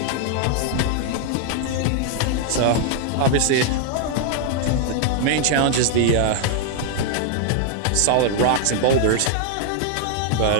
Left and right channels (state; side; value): different; both; correlation 0.00